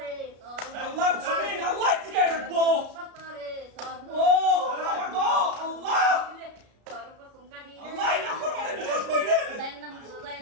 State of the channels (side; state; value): left; late; 33 ms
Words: আল্লাহর জমিন আল্লাহ ঠিকায় রাখবো ও আল্লাহ আল্লাহ না ফরমানে বিশ্বাস কইলে